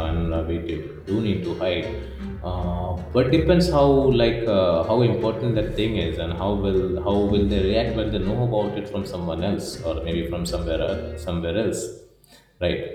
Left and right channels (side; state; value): both; identical; correlation 1.00